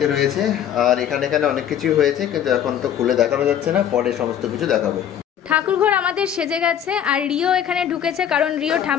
রয়েছে। আর এখানে অনেক কিছুই হয়েছে, কিন্তু এখন তো খুলে দেখানো যাচ্ছে না, পরে সমস্ত কিছু দেখাবো। ঠাকুরঘর আমাদের সেজে গেছে, আর রিও এখানে ঢুকেছে, কারণ রিও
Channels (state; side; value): quieter; right; 9.6 dB